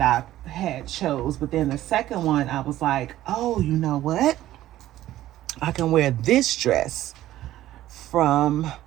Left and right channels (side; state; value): left; quieter; 14.1 dB